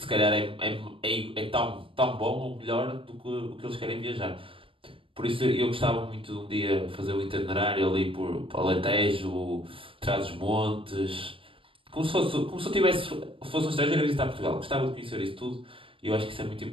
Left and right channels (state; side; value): late; left; 0.26 ms